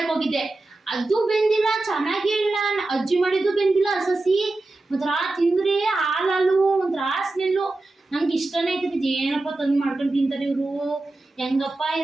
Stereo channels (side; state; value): left; quieter; 3.0 dB